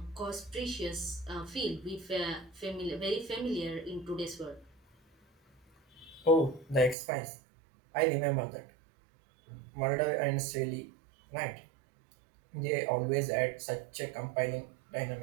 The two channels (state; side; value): drops out; left; at 7.0 s